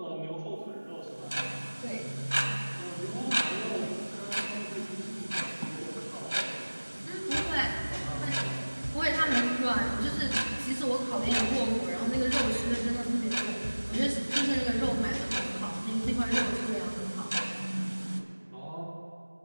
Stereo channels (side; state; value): both; inverted; correlation -1.00